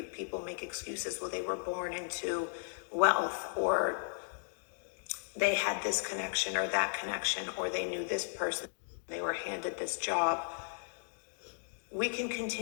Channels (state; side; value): silent; right; digital silence